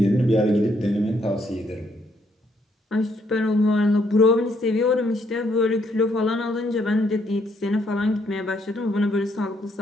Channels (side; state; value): both; normal; correlation 0.72